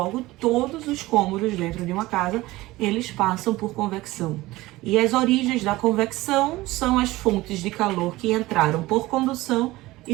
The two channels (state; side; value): quieter; left; 18.7 dB